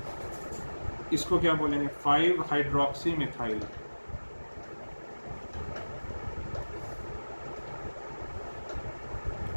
इसको क्या बोलेंगे? 5 हाइड्रोक्सी मिथाइल।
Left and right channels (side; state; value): both; inverted; correlation -1.00